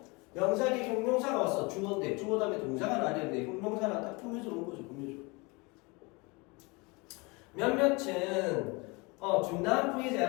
명사 뒤에 형용사가 왔어. 주어인데 주어 다음에 동사가 나왔는데 형용사는 딱 꾸며져 놓은 거죠. 꾸며줘. 몇몇은 중단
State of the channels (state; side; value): quieter; right; 27.1 dB